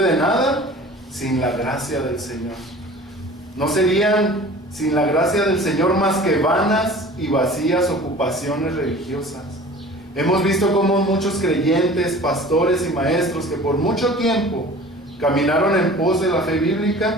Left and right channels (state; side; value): normal; both; correlation 0.43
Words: nada sin la gracia del Señor. No serían sin la gracia del Señor más que vanas y vacías ocupaciones religiosas. Hemos visto cómo muchos creyentes, pastores y maestros que por mucho tiempo caminaron en pos de la fe